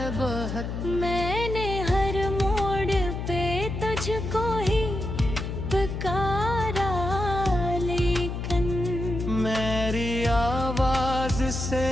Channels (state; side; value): noise; left; hum, 5 dB below the sound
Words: बहुत। मैंने हर मोड़ पे तुझको ही पुकारा, लेकिन मेरी आवाज से